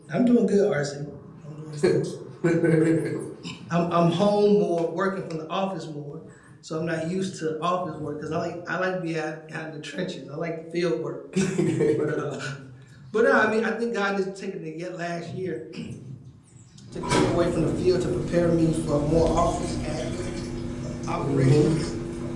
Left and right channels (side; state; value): both; identical; correlation 1.00